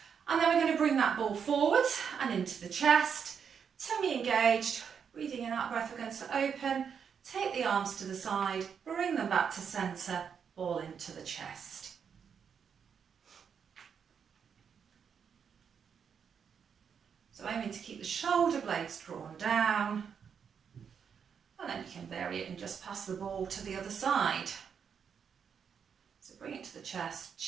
And then we're going to bring that ball forward and into the chest, tummy engaged, breathing in, out breath, we're going to open, take the arms to the side, bring them back to centre, ball into the chest. So aiming to keep the shoulder blades drawn down, and then you can vary it and just pass the ball to the other side. So bring it to the chest,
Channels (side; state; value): left; quieter; 7.0 dB